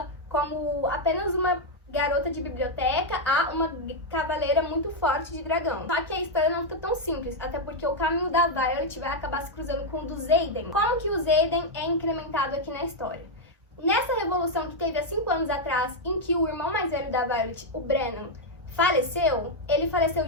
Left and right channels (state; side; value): normal; both; correlation 0.00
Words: como apenas uma garota de biblioteca a uma cavaleira muito forte de dragão. Só que a história não fica tão simples, até porque o caminho da Violet vai acabar se cruzando com o do Xaden. Como que o Xaden é incrementado aqui na história? Nessa revolução que teve há 5 anos atrás, em que o irmão mais velho da Violet, o Brennan, faleceu, ele faleceu